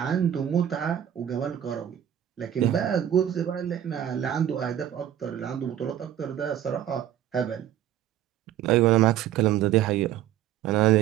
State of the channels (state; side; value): quieter; left; 11.0 dB